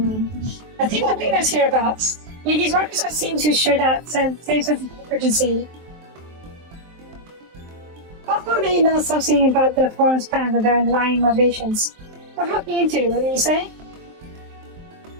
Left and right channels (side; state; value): left; late; 23 ms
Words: think what cleaners hereabouts. These workers don't seem to share that same sense of urgency. Hopefully they know something about the forum's plans and their underlying motivations. What are looking into? What do you say?